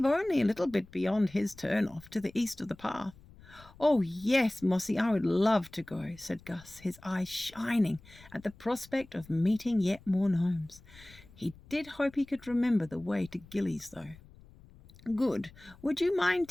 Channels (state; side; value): noise; left; rumble, 23 dB below the sound